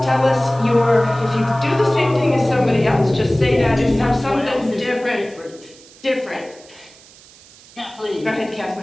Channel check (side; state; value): right; noise; hiss, 24 dB below the sound